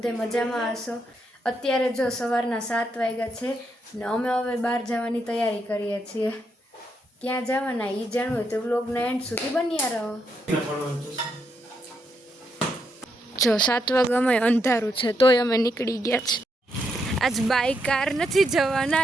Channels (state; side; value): normal; both; correlation 0.79